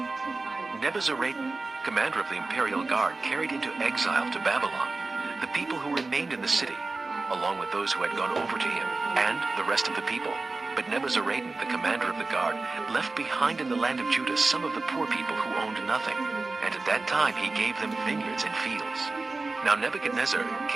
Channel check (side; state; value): left; quieter; 3.5 dB